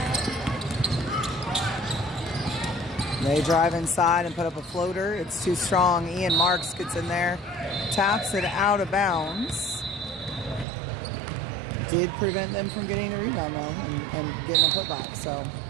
They drive inside and put up a floater. It's too strong. Ian Marks gets in there, taps it out of bounds. Did prevent them from getting the rebound, though, and getting a putback. So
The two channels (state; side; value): drops out; left; at 10.7 s